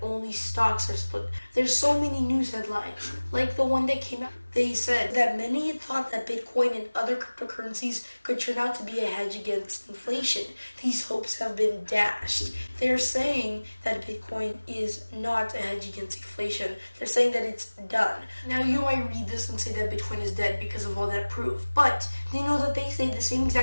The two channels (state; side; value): inverted; both; correlation -1.00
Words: stocks are split. There's so many news headlines, like the one that came out. They said that many thought that Bitcoin and other cryptocurrencies could turn out to be a hedge against inflation. These hopes have been dashed. They're saying that Bitcoin is not a hedge against inflation. They're saying that it's done. Now, you might read this and say that Bitcoin is dead because of all that proof, but they know that they say the same